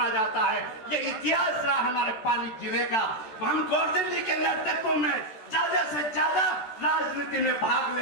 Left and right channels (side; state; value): right; late; 14 ms